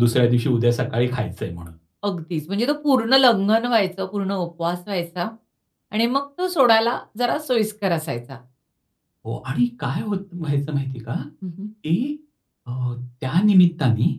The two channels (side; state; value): both; identical; correlation 1.00